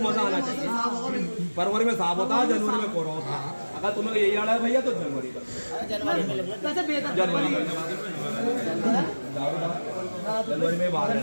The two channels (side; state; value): both; inverted; correlation -1.00